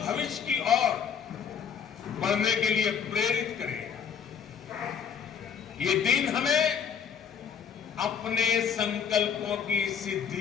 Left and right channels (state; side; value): quieter; right; 7.2 dB